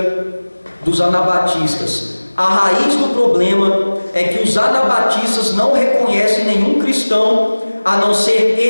dos anabatistas: a raiz do problema é que os anabatistas não reconhecem nenhum cristão a não ser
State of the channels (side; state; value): both; inverted; correlation -1.00